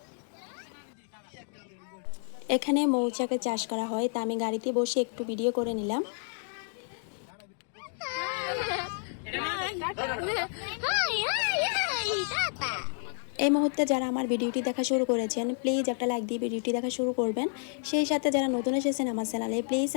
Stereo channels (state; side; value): silent; right; 58 dB below the other